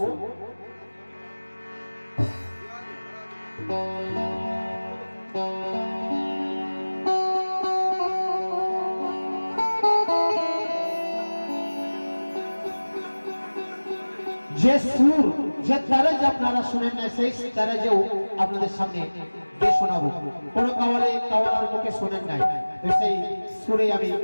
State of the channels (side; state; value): both; inverted; correlation -1.00